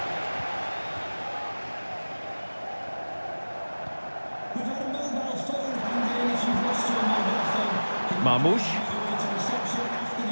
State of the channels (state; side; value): inverted; both; correlation -1.00